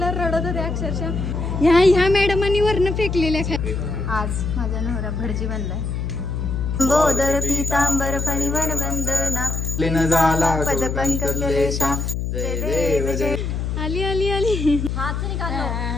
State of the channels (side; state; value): left; noise; hum, 2 dB below the sound